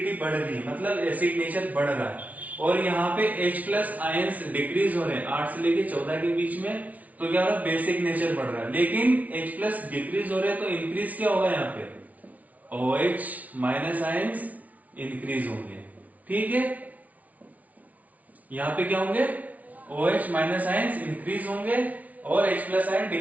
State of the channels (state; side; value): late; left; 0.071 ms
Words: बढ़ रही है, मतलब एसिड नेचर बढ़ रहा है। और यहाँ पे H प्लस आयंस डिक्रीज हो रहे हैं 8 से लेके 14 के बीच में, तो क्या हो रहा है, बेसिक नेचर बढ़ रहा है। लेकिन H प्लस डिक्रीज हो रहे हैं तो इंक्रीज क्या होगा, यहाँ पे OH माइनस आयंस इंक्रीज होंगे। ठीक है, यहाँ पे क्या होंगे, OH माइनस आयंस इंक्रीज होंगे और H प्लस आयन